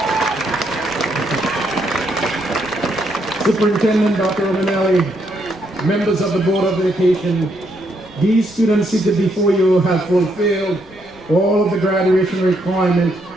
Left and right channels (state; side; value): noise; left; rumble, 27 dB below the sound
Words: Superintendent Dr. Romanelli, members of the Board of Education, these students seated before you have fulfilled all of the graduation requirements